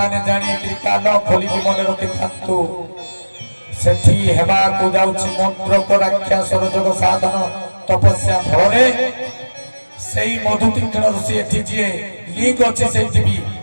ଜାଣିକି କାନ ଖୋଲିକି ମନେ ରଖିଥାନ୍ତୁ ସେଠି ହେବାକୁ ଯାଉଛି ମନ୍ତ୍ରକ ରାକ୍ଷସର ଯୋଗ ସାଧନ ତପସ୍ୟା ଫଳରେ ସେଇ ମଧୁ ତୀକ୍ଷ୍ଣ ଋଷି ଏଠି ଯିଏ ଲିଙ୍କ୍ ଅଛି ସେଇଠି ବି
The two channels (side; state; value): both; inverted; correlation -1.00